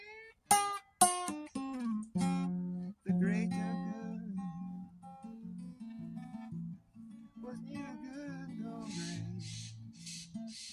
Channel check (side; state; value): both; identical; correlation 1.00